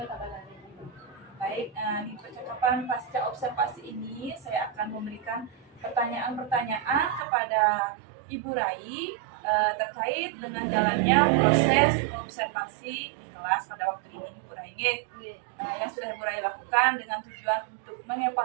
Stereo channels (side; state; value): left; drops out; at 7.2 s